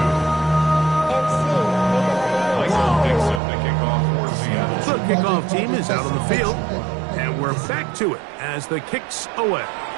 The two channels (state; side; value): drops out; left; at 3.4 s